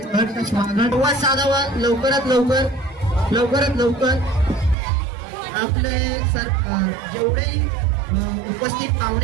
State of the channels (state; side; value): drops out; left; at 4.8 s